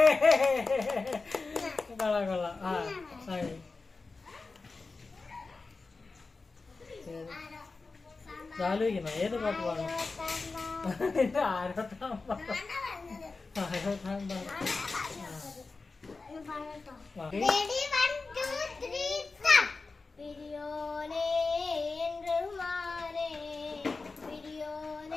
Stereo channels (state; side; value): quieter; right; 3.9 dB